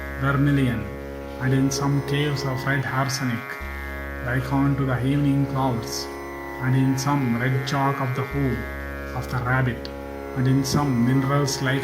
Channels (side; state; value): both; identical; correlation 1.00